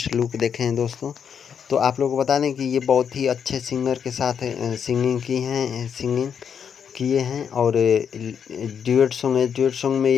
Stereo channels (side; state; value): right; quieter; 7.5 dB